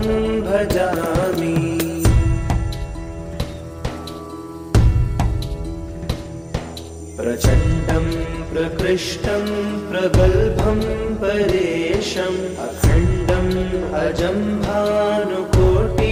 भजामि। प्रचण्डं प्रकृष्टं प्रगल्भं परेशम् अखण्डम् अजं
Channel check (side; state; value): both; identical; correlation 1.00